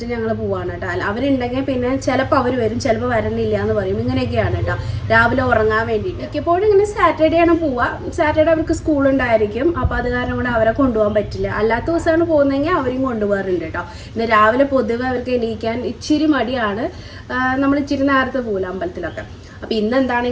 ഞങ്ങൾ പോവാണ് കേട്ടോ. അവരുണ്ടെങ്കിൽ പിന്നെ ചിലപ്പോൾ അവർ വരും, ചിലപ്പോൾ വരണില്ല എന്ന് പറയും. ഇങ്ങനെയൊക്കെയാണ് കേട്ടോ. രാവിലെ ഉറങ്ങാൻ വേണ്ടിയിട്ട് മിക്കപ്പോഴും ഇങ്ങനെ സാറ്റർഡേ ആണ് പോവുക. സാറ്റർഡേ അവർക്ക് സ്കൂളുണ്ടായിരിക്കും. അപ്പോൾ അത് കാരണം കൊണ്ട് അവരെ കൊണ്ടുപോകാൻ പറ്റില്ല. അല്ലാത്ത ദിവസമാണ് പോകുന്നതെങ്കിൽ അവരെയും കൊണ്ടുപോകാറുണ്ട് കേട്ടോ. ഇന്ന് രാവിലെ പൊതുവെ അവർക്ക് എണീക്കാൻ ഇച്ചിരി മടിയാണ്. നമ്മൾ ഇച്ചിരി നേരത്തെ പോകില്ല അമ്പലത്തിലൊക്കെ. അപ്പം ഇന്ന്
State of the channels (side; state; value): both; identical; correlation 1.00